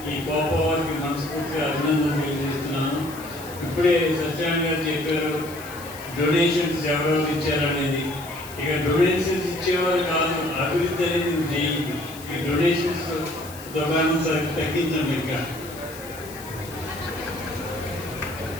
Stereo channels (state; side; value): noise; left; hiss, 16 dB below the sound